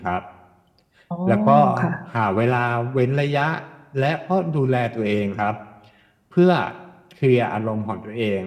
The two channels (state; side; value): identical; both; correlation 1.00